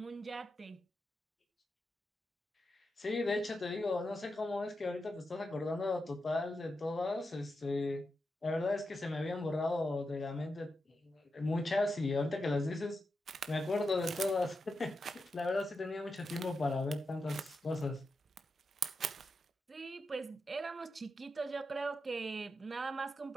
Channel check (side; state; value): both; normal; correlation 0.88